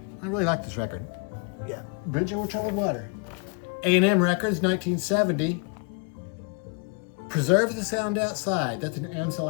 I really like this record. Yeah, Bridge Over Troubled Water. R.E.M. Records, 1970. Preserve the Sound Outside. That's an Ansel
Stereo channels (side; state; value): right; quieter; 35.0 dB